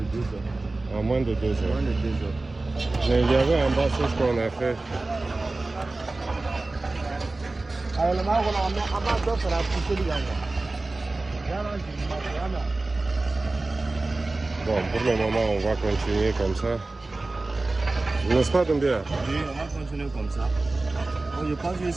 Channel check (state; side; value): quieter; left; 3.2 dB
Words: heures. En moins de 2 heures. Moins de 2 heures. Mais il y avait en bas c'est ce qu'on a fait. Bon, pour le moment, on va continuer comme ça. N'est-ce pas, Doumbia? Oui, on va continuer comme ça. Je pense que